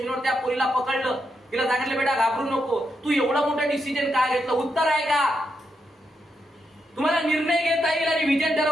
त्या पोरीला पकडलं, तिला सांगितलं बेटा घाबरू नको, तू एवढा मोठा डिसिजन का घेतलं? उत्तर आहे का? तुम्हाला निर्णय घेता येईल आणि विजन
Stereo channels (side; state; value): both; normal; correlation 0.83